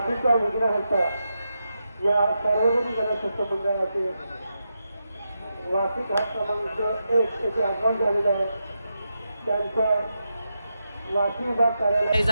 विघ्नहर्ता या सार्वजनिक गणेशोत्सव मंडळाचे वाशी घाट क्रमांक 1 येथे आगमन झालेलं आहे. त्यांचं वाशी विभाग कार्यालय.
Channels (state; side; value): inverted; both; correlation -0.87